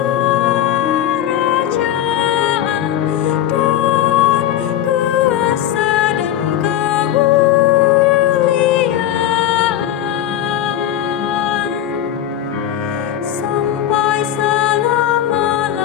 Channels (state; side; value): quieter; right; 11.4 dB